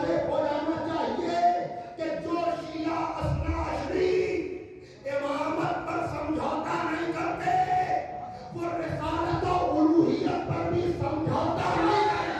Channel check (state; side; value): identical; both; correlation 1.00